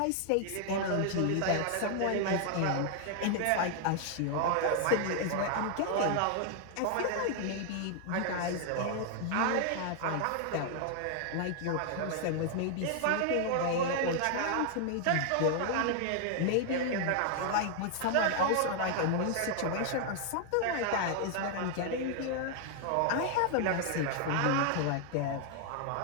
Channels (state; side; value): different; both; correlation 0.00